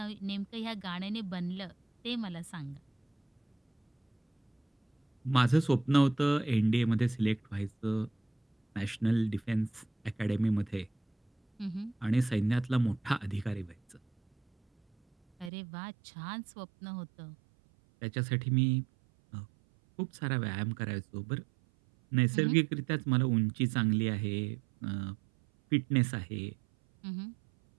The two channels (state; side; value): drops out; left; at 15.5 s